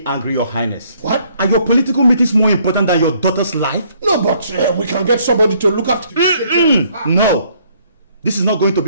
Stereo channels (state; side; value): inverted; both; correlation -0.65